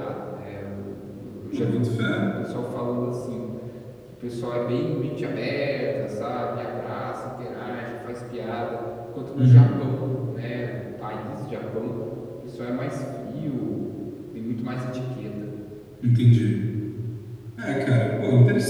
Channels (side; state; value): both; identical; correlation 1.00